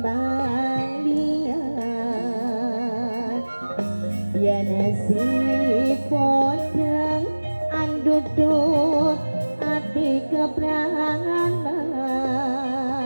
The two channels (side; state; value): both; inverted; correlation -1.00